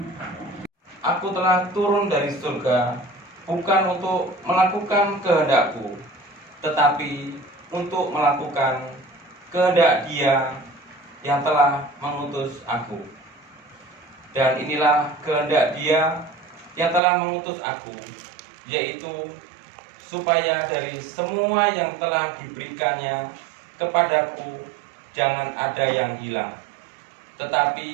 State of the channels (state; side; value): drops out; left; at 17.0 s